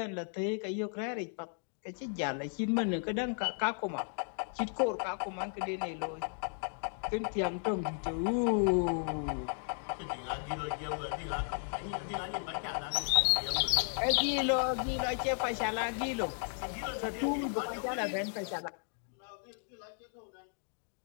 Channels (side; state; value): right; silent; 55 dB below the other